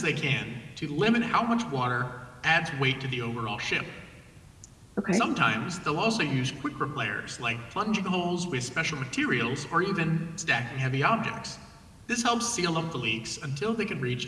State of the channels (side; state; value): both; identical; correlation 1.00